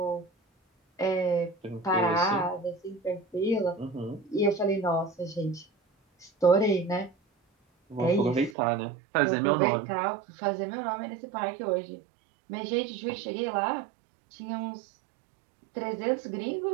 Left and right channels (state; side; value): drops out; left; at 8.6 s